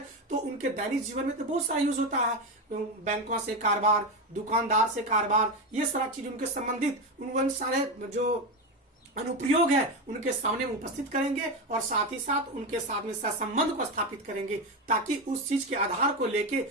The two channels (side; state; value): both; normal; correlation 0.15